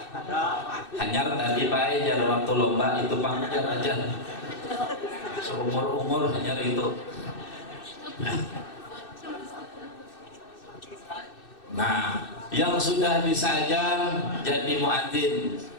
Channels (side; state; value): right; late; 2.6 ms